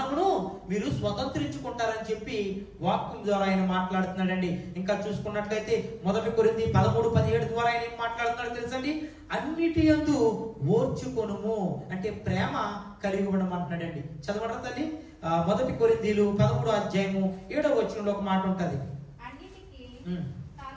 మీరు స్వతంత్రించుకుంటారని చెప్పి వాక్యం ద్వారా ఆయన మాట్లాడుతున్నాడండి. ఇంకా చూసుకున్నట్లయితే 1 కొరింథీ 13:17 ద్వారా ఆయన ఏం మాట్లాడుతున్నాడు తెలుసండి, అన్నిటి యందు ఓర్చుకొనుము అంటే ప్రేమ కలిగి ఉండమంటున్నాడండి. చదవడం తల్లి, 1 కొరింథీలు 13వ అధ్యాయము 7వ వచనంలో ఒక మాట ఉంటది. అన్నిటికీ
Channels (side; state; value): both; identical; correlation 1.00